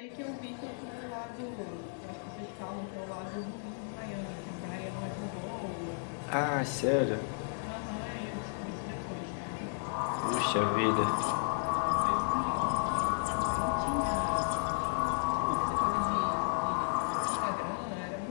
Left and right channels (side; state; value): right; silent; digital silence